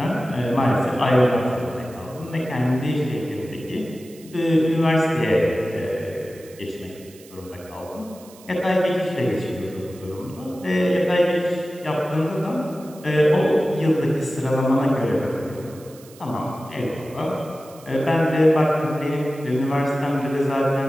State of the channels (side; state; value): right; noise; hiss, 23 dB below the sound